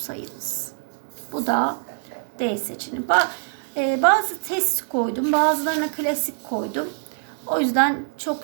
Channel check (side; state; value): left; silent; digital silence